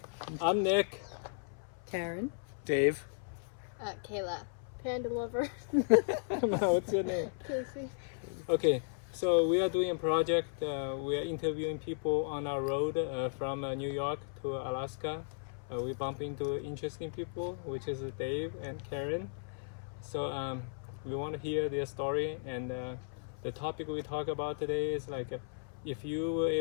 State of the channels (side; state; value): right; silent; 54 dB below the other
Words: I'm Nick. Karen. Dave. Kayla. Panda lover. What's your name? Casey. Okay. So we are doing a project. We are interviewing people on our road from New York to Alaska. We bump into interesting people, which is Dave and Karen. So we want to hear their story, and the topic we talk about today is like if you were